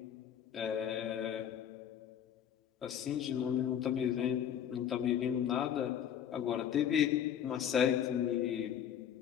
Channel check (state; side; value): quieter; right; 9.4 dB